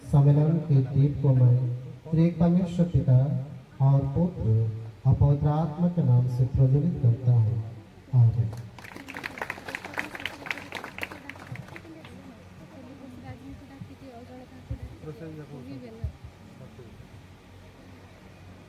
सम्मेलन के दीप को मैं त्रिएक परमेश्वर पिता और पुत्र और पवित्र आत्मा के नाम से प्रज्वलित करता हूँ। आमीन।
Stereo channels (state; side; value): identical; both; correlation 1.00